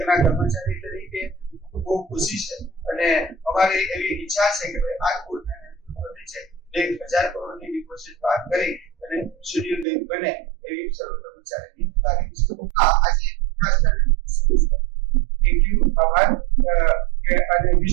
કર્મચારી તરીકે બહુ ખુશી છે અને અમારી એવી ઈચ્છા છે કે આ બોર્ડના નેતૃત્વથી છે બેંક 1000 કરોડની ડિપોઝિટ પાર કરી અને શૂન્ય બેંક બને એવી સર્વ કર્મચારીની લાગણી છે આજે ખાસ કરીને થેન્ક યુ આભાર કે અને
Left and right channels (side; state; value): left; drops out; at 9.9 s